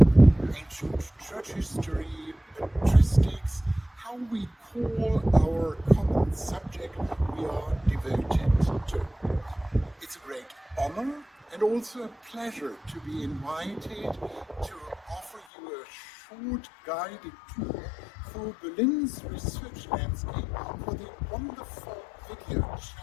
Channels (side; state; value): right; drops out; at 15.5 s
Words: ancient church history, patristics, how we call our common subject we are devoted to. It's a great honor and also a pleasure to be invited to offer you a short guided tour through Berlin's research landscape for the wonderful video